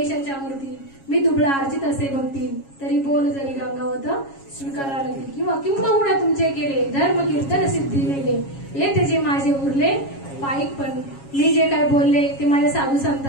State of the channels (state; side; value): late; right; 7.3 ms